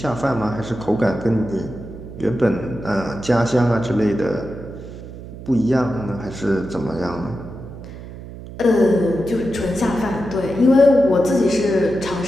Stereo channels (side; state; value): right; noise; hum, 13 dB below the sound